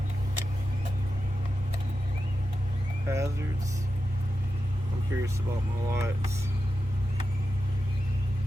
Hazards. I'm curious about my lights.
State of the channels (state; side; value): normal; both; correlation 0.90